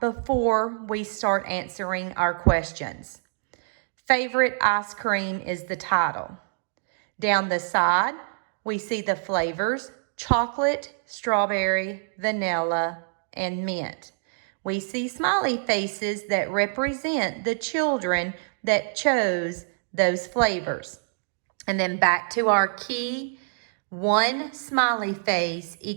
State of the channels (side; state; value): left; silent; digital silence